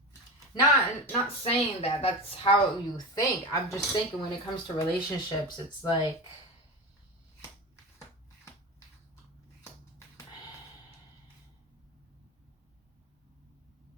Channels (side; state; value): both; normal; correlation 0.24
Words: Not saying that that's how you think. I'm just thinking when it comes to relationships, it's like,